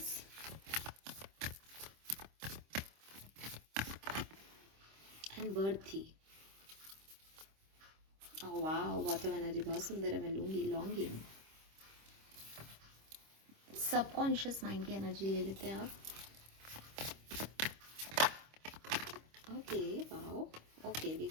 and worthy. ओह वाह, वाटर एनर्जी बहुत सुंदर है, मैं लूंगी, लॉन्गिंग। सबकॉन्शियस माइंड की एनर्जी ले लेते हैं आप। Okay wow, okay we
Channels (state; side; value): late; left; 26 ms